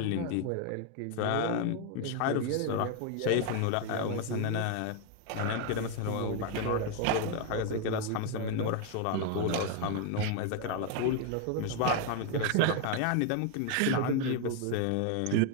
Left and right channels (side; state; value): both; different; correlation 0.01